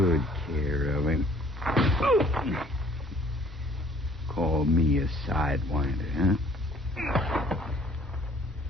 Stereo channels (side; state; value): both; normal; correlation 0.56